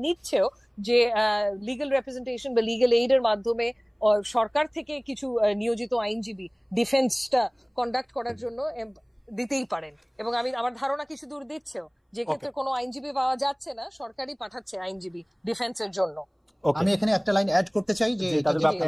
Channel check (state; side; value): identical; both; correlation 1.00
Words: নিচ্ছেও, যে লিগ্যাল রিপ্রেজেন্টেশন বা লিগ্যাল এইডের মাধ্যমে সরকার থেকে কিছু নিয়োজিত আইনজীবী ডিফেন্সটা কন্ডাক্ট করার জন্য দিতেই পারেন। এবং আমার ধারণা কিছু দূর দিচ্ছেও, যে ক্ষেত্রে কোনো আইনজীবী পাওয়া যাচ্ছে না, সরকারই পাঠাচ্ছে আইনজীবী ডিফেন্সের জন্য। আমি এখানে একটা লাইন অ্যাড করতে চাই, যে